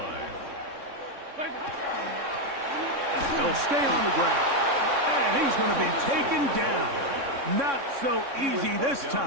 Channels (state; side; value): late; left; 3.6 ms